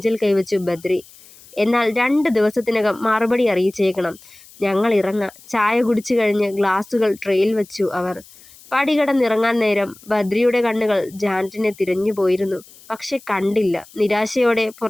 കൈവച്ചു ബദ്രി. എന്നാൽ 2 ദിവസത്തിനകം മറുപടി അറിയിച്ചേക്കണം. ഞങ്ങൾ ഇറങ്ങാം. ചായ കുടിച്ചു കഴിഞ്ഞ് ഗ്ലാസുകൾ ട്രെയിൽ വെച്ചു അവർ. പടികടന്നിറങ്ങാൻ നേരം ബദ്രിയുടെ കണ്ണുകൾ ജാനറ്റിനെ തിരഞ്ഞു പോയിരുന്നു. പക്ഷെ കണ്ടില്ല. നിരാശയോടെ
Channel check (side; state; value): left; noise; hiss, 23 dB below the sound